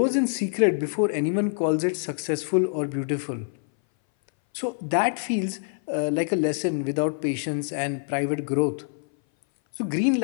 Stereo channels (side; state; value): right; silent; 59 dB below the other